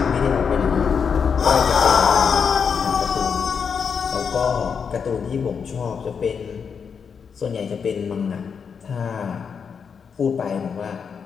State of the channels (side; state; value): right; quieter; 6.4 dB